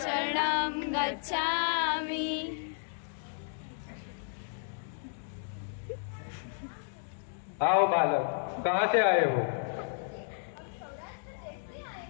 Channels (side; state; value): right; silent; digital silence